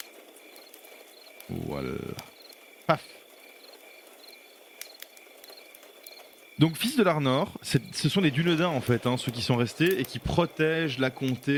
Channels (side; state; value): both; identical; correlation 1.00